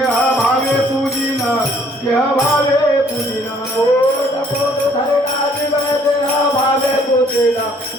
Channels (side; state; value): both; normal; correlation 0.61